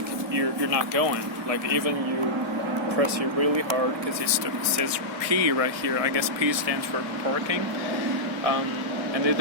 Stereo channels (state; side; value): late; left; 1.7 ms